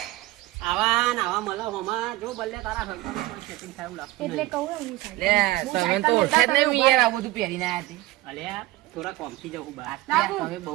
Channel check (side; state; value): left; quieter; 18.1 dB